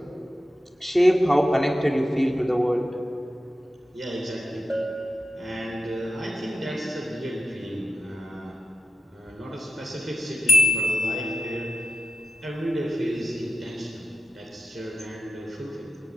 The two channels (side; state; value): both; normal; correlation 0.92